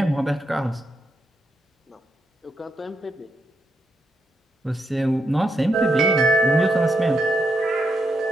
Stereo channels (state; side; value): normal; both; correlation 0.81